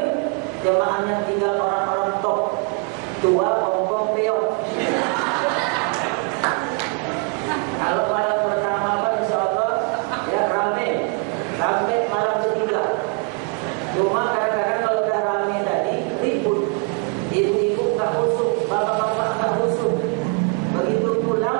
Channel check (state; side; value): quieter; left; 33.6 dB